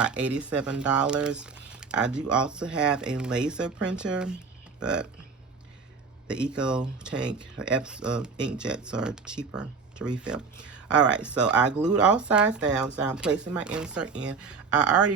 $87. I do also have a laser printer, but the Eco Tank inkjets are cheaper to refill. All right, so I glued all sides down, so I'm placing my insert in. I already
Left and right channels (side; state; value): left; quieter; 5.1 dB